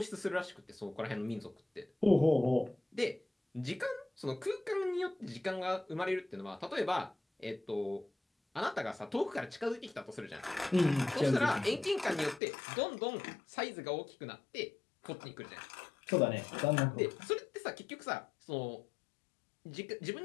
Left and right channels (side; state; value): right; drops out; at 12.4 s